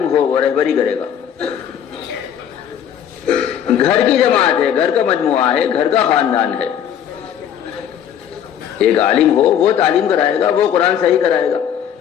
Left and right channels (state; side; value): quieter; right; 9.4 dB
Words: ہو، وہ رہبری کرے گا۔ گھر کی جماعت ہے، گھر کا مجموعہ ہے، گھر کا خاندان ہے، ایک عالم ہو، وہ تعلیم کرائے گا، وہ قرآن صحیح کرائے گا،